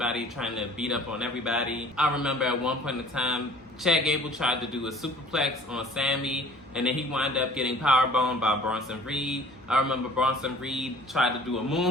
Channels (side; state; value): left; noise; hum, 27 dB below the sound